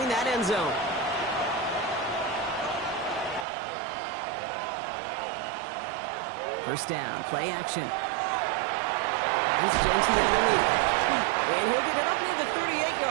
that end zone. First down, play action. There's Jeanty underneath. And he'll get it up near the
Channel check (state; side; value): drops out; left; at 3.5 s